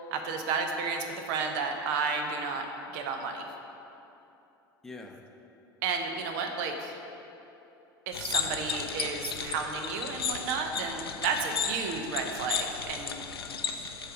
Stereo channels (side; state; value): both; normal; correlation 0.13